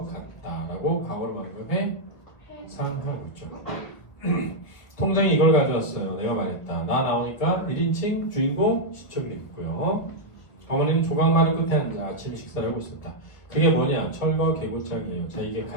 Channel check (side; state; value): right; late; 1.2 ms